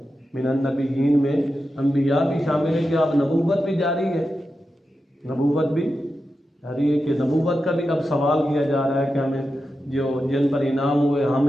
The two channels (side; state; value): both; normal; correlation 0.90